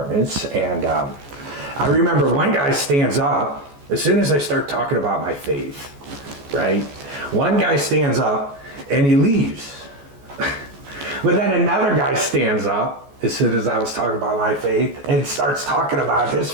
And I remember one guy stands up as soon as I start talking about my faith, right? One guy stands up and he leaves. But then another guy stands up as soon as I was talking about my faith and starts talking about his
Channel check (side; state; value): left; late; 14 ms